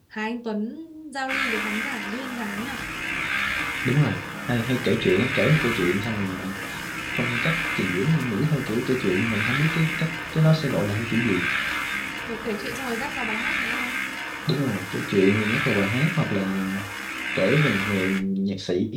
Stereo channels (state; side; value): identical; both; correlation 1.00